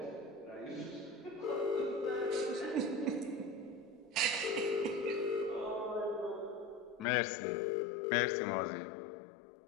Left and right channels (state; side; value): drops out; right; at 7.1 s